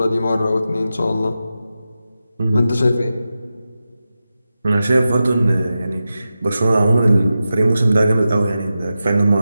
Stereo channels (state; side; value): inverted; both; correlation -0.91